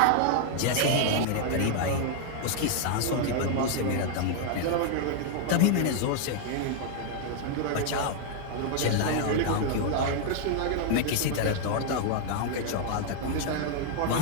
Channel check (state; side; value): different; both; correlation 0.00